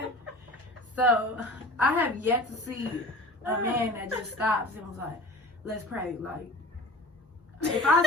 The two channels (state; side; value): normal; both; correlation 0.40